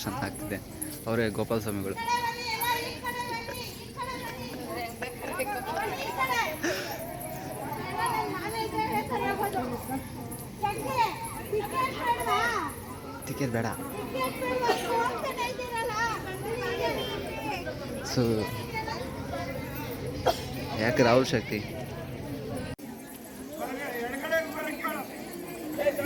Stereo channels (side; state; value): both; identical; correlation 1.00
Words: ಆಗ್ತಿದೆ. ಅವರೇ ಗೋಪಾಲ ಸ್ವಾಮಿಗಳು. ಟಿಕೆಟ್ ಬೇಡ. ಸೊ ಯಾಕೆ ರಾಹುಲ್ ಶಕ್ತಿ